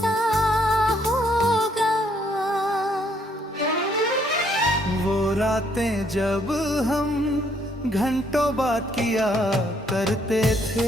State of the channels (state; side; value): normal; both; correlation 0.69